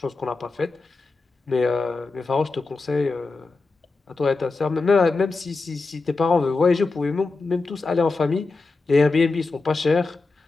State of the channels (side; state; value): right; quieter; 3.8 dB